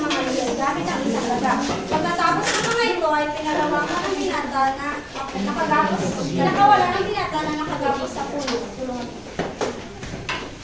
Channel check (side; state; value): both; identical; correlation 1.00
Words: sumabit ang isang daga. Pagkatapos ng mga ito ay pinalawakan ng binata na nakagapos, pinakawala ng binata na nakagapos sa puno.